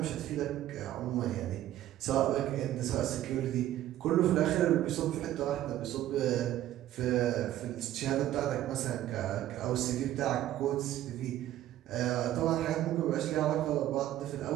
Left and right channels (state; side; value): quieter; left; 13.2 dB